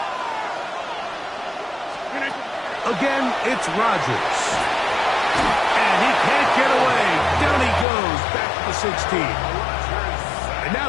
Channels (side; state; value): right; drops out; at 7.9 s